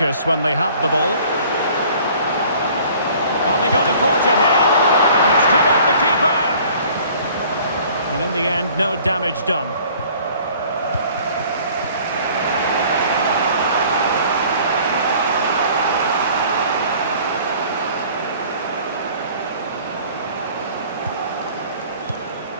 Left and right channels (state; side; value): inverted; both; correlation -0.52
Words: when they have the ball. Are they going to forge ahead? It's come off the keeper. And in the end, no damage done.